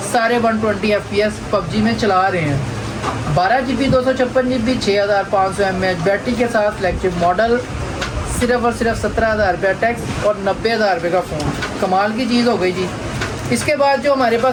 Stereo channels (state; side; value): identical; both; correlation 1.00